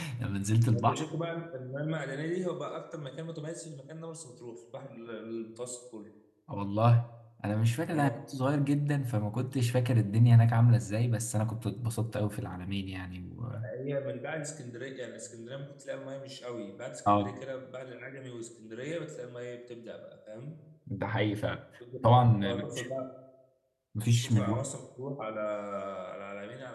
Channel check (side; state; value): both; identical; correlation 1.00